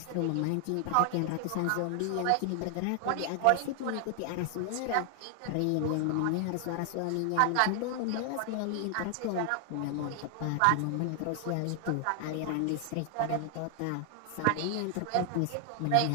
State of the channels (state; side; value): different; both; correlation 0.00